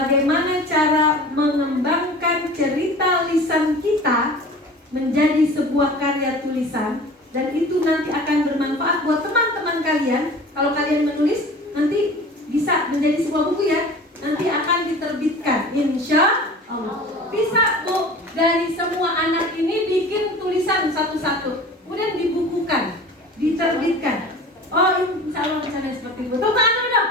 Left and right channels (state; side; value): normal; both; correlation 0.40